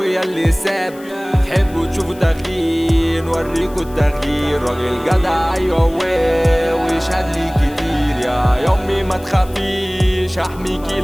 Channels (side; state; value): left; noise; hiss, 23 dB below the sound